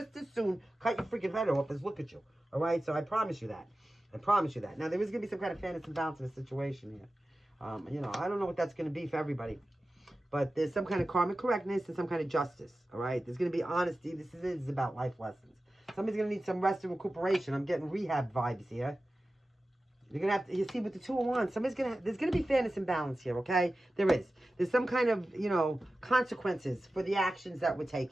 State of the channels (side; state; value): both; normal; correlation 0.95